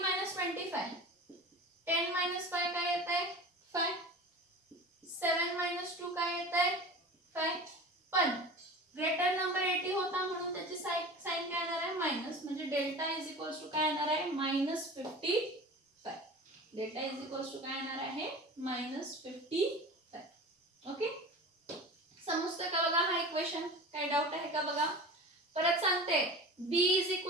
मायनस 25 10 मायनस 5 काय येत आहे 5. 7 मायनस 2 काय येत आहे 5. पण ग्रेटर नंबर 80 होता म्हणून त्याची साइन काय येणार आहे मायनस. म्हणजे डेल्टा इज इक्वल्स टू काय येणार आहे -55. डेल्टा इज इक्वल्स टू काय येणार आहे -55. ओके. समजतं का बघा हा इक्वेशन? काय डाऊट आहे का बघा? परत सांगते b इज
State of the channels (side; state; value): both; normal; correlation 0.35